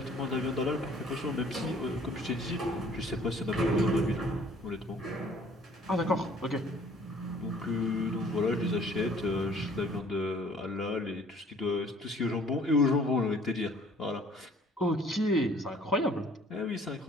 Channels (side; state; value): both; normal; correlation 0.55